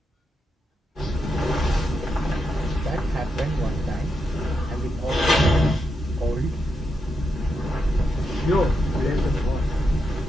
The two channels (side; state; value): both; normal; correlation 0.84